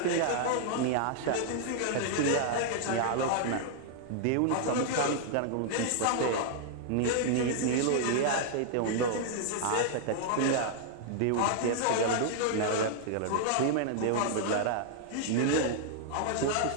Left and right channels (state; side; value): different; both; correlation -0.01